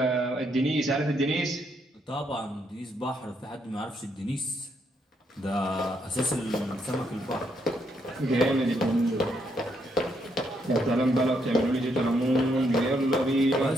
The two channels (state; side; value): normal; both; correlation 0.76